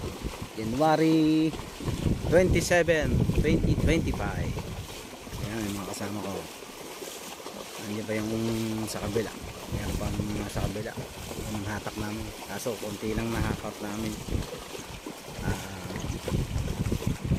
January 27, 2025. Ayan yung mga kasama ko. Nandiyan pa yung sa kabila. Ayan pang nasa kabila yung hatak namin, kaso konti lang nahakot namin.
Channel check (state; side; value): identical; both; correlation 1.00